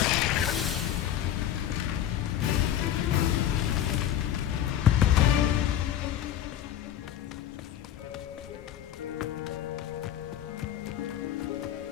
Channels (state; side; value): quieter; right; 10.9 dB